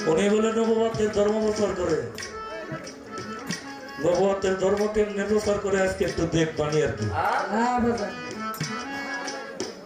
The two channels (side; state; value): both; identical; correlation 1.00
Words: উনি বলে নবুয়তের ধর্ম প্রচার করে। নবুয়তের ধর্ম কেমনে প্রচার করে আজকে একটু দেখবানি আর কি।